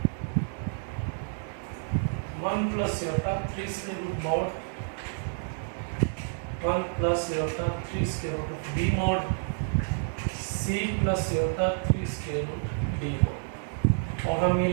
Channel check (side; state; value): left; silent; digital silence